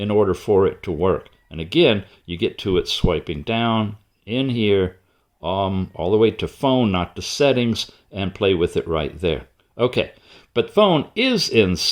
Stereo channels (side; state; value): both; identical; correlation 1.00